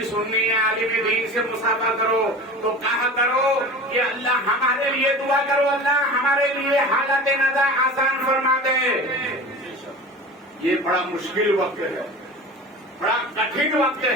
سنی عالم دین سے مصافحہ کرو تو کہا کرو کہ اللہ ہمارے لیے دعا کرو, اللہ ہمارے لیے حالت نزا آسان فرما دے. یہ بڑا مشکل وقت ہے, بڑا کٹھن وقت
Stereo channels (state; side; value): normal; both; correlation 0.35